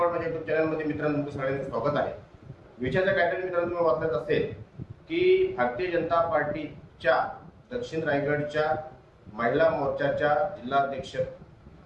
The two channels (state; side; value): identical; both; correlation 1.00